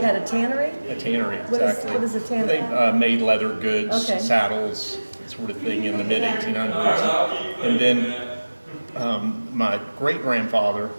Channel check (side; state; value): both; inverted; correlation -1.00